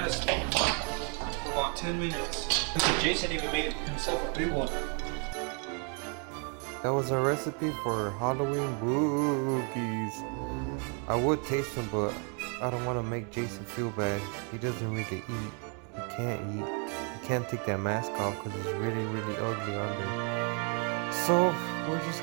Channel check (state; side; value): quieter; left; 38.3 dB